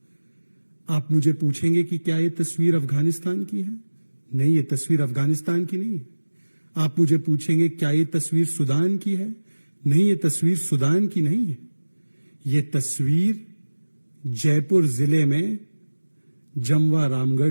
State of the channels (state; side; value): inverted; both; correlation -1.00